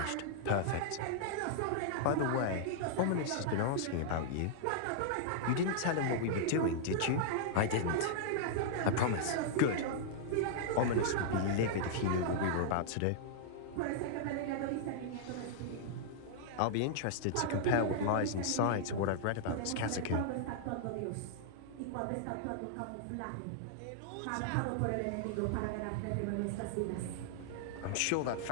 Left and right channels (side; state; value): both; different; correlation -0.01